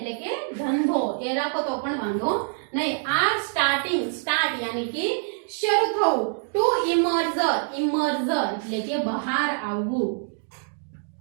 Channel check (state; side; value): silent; left; 62 dB below the other